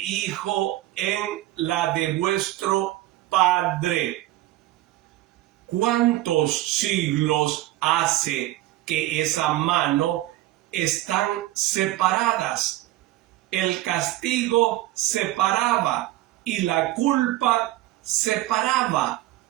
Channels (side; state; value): left; quieter; 16.2 dB